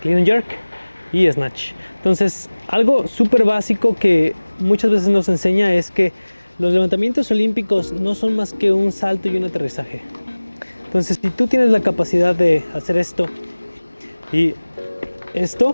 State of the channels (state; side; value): inverted; both; correlation -1.00